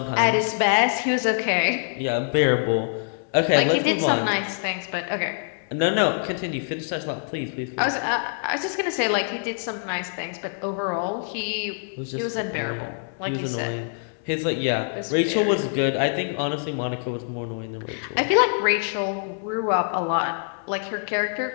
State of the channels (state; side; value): silent; right; 60 dB below the other